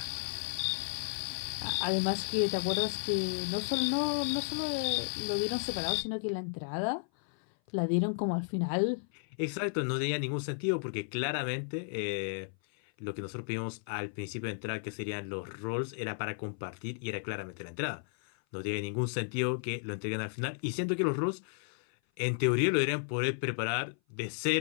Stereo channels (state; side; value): silent; right; 55 dB below the other